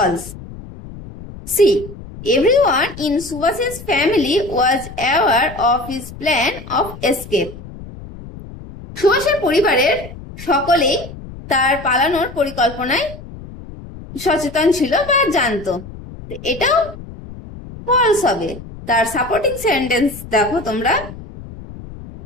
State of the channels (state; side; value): noise; left; rumble, 15 dB below the sound